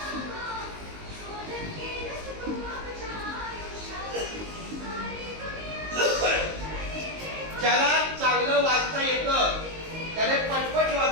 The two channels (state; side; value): late; left; 19 ms